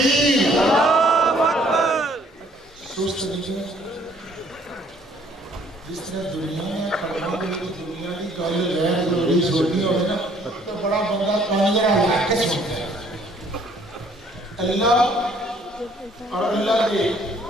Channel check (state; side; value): normal; both; correlation 0.61